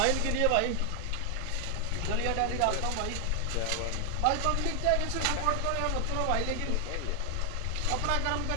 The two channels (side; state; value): both; different; correlation 0.00